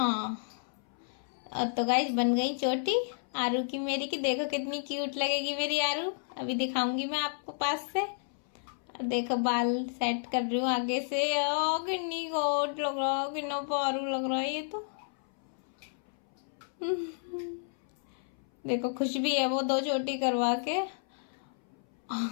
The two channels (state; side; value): silent; right; 57 dB below the other